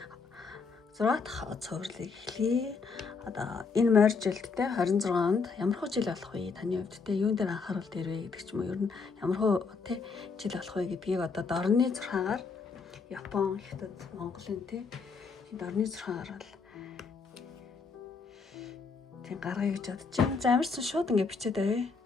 6 дахь цувралыг эхлэе. Одоо энэ морь жилд те 26-нд ямар хөө жил болох вэ? Таны хувьд те юун дээр анхаарал дээрвэ гэдэг ч юм уу. Ер нь ямар хөө те жил болох вэ гэдгийг одоо дорны 6-аар Япон, Хятад, Монголын те дорны 6-аар бол тийм гаргая гэж бодож байна. За амарсан шууд ингэ бичээд авъя.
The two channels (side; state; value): right; quieter; 4.8 dB